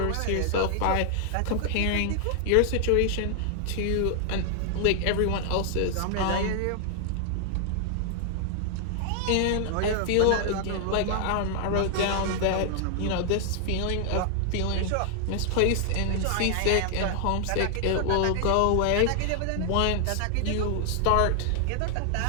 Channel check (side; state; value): both; different; correlation 0.00